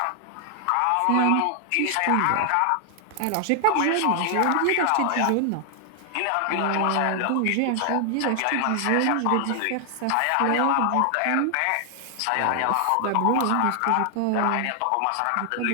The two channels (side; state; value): both; different; correlation 0.00